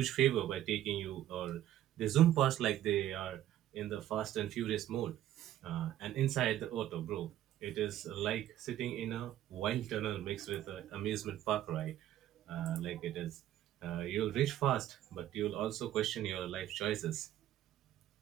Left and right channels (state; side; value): quieter; left; 12.6 dB